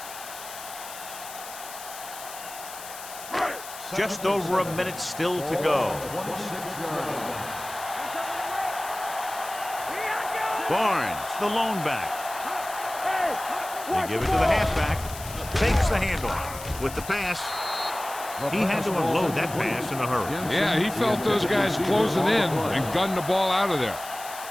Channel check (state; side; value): noise; left; hiss, 13 dB below the sound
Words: Just over a minute still to go. 26-yard line. Barnes, the lone back. They give it to the halfback. Takes the handoff. With the pass, he had to unload that pass in a hurry. Yeah, he felt those guys closing in and gunned the ball out of there.